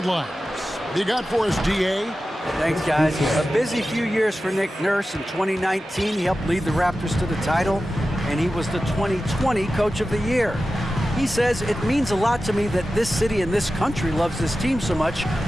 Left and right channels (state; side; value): normal; both; correlation 0.94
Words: You got for us, DA? Thanks, guys. A busy few years for Nick Nurse. In 2019, he helped lead the Raptors to the title, and he was the 2020 Coach of the Year. He says, it means a lot to me that this city and this country loves this team so much,